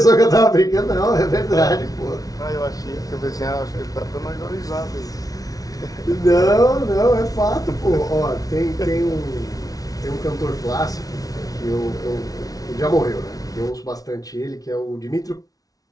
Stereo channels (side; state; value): right; late; 0.18 ms